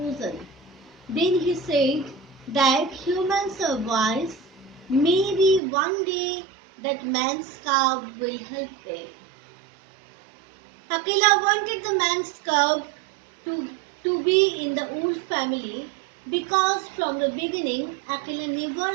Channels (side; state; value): left; drops out; at 5.6 s